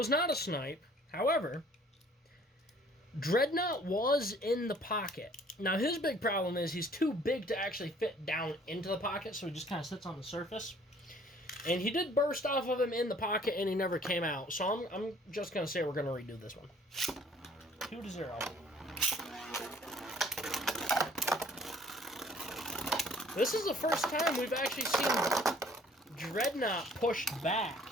not a snipe. However, Dreadknot was in the pocket. Now, his big problem is he's too big to actually fit down into the pocket, so he just kind of sits on the surface. And he did burst off of him in the pocket, and he never came out. So I'm just going to say we're going to redo this one. 2 to 0. This is the first time we've actually seen Dreadknot pushed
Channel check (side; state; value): both; normal; correlation 0.56